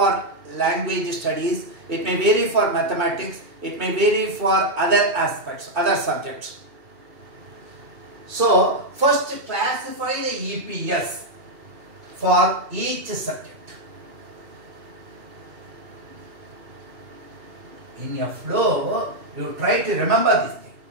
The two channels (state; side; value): late; left; 2.7 ms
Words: language studies, it may vary for mathematics, it may vary for other aspects, other subjects. So, first classify the EPS for each subject. In your flow, you try to remember this thing.